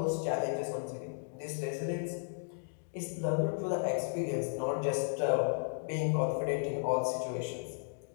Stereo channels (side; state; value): right; silent; digital silence